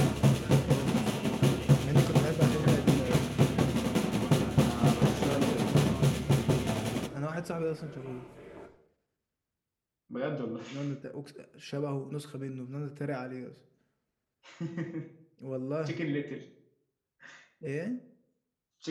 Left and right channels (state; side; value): identical; both; correlation 1.00